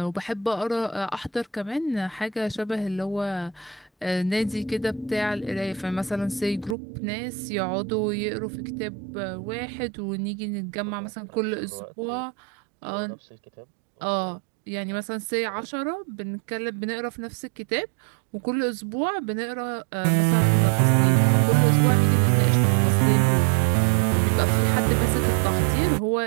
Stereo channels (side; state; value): left; drops out; at 6.8 s